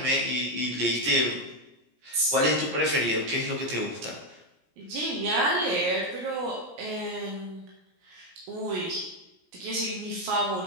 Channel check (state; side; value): late; left; 17 ms